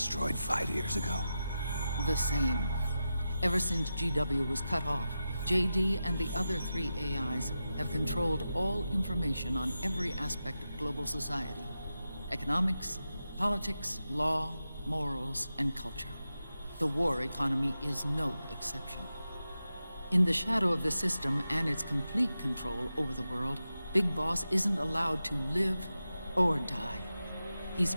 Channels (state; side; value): inverted; both; correlation -0.91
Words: 5 years ago? The same. Ever since GW was cut off, JD and the other 3 AIs have controlled all information on every aspect of global society. Economics, politics, law, morals, and culture. The war economy is no exception. In the shadow of the system and its complete control over the world, Big Boss isn't allowed to live or die. He's